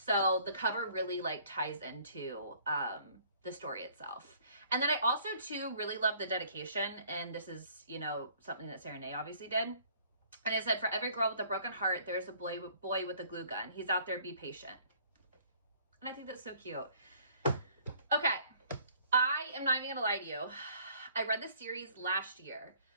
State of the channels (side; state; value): both; inverted; correlation -0.58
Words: the cover really like ties into the story itself. And then I also too really love the dedication, and this is, you know, something that Sarah Nay obviously did. And it said, for every girl with a broken heart, there's a boy with a glue gun. He's out there, be patient. And I think that's so cute. Okay, I am not even gonna lie to you. I read this series last year.